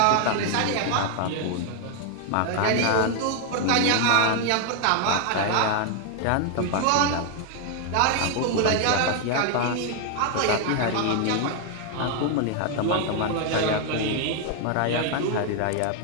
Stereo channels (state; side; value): different; both; correlation 0.01